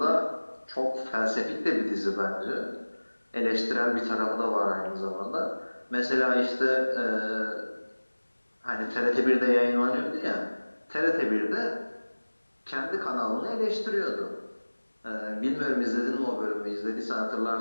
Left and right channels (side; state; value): both; inverted; correlation -1.00